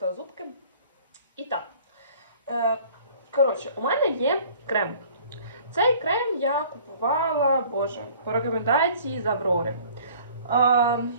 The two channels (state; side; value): inverted; both; correlation -0.51